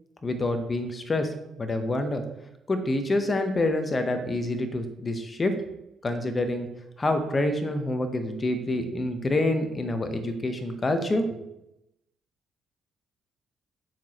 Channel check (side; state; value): both; normal; correlation 0.82